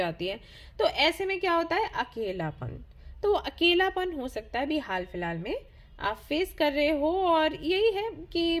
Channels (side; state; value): both; identical; correlation 1.00